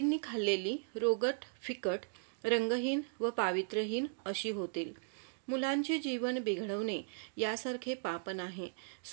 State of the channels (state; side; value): silent; left; digital silence